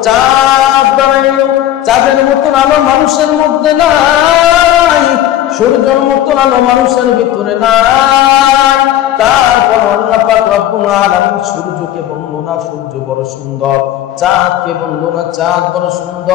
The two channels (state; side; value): quieter; right; 12.5 dB